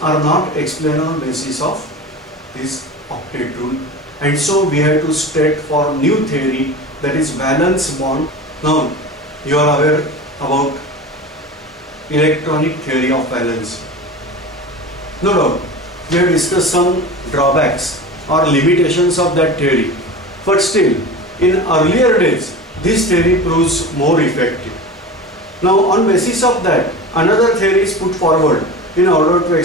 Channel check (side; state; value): both; normal; correlation 0.32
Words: are not explained on basis of this octet rule, and so we have to state for new theory, that is valence bond. Now you are aware about electronic theory of valence. No doubt we have discussed some drawbacks or limitations of that theory, but still in earlier days this theory proves more effective. Now on basis of that, another theory is put forward in order to